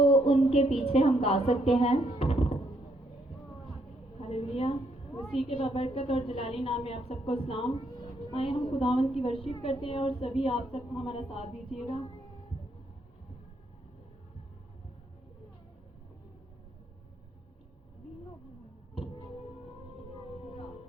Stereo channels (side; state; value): both; normal; correlation 0.73